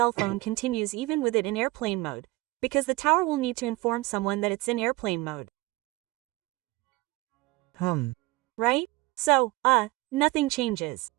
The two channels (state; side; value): quieter; left; 21.1 dB